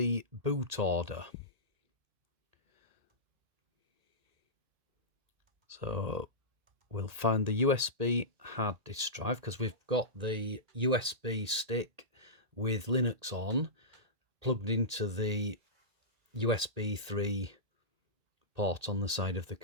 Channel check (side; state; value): left; late; 1.8 ms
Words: boot order. So we'll find the USB hard disk drive, because we've got the USB stick with Linux on plugged into the USB 3 port on the side of the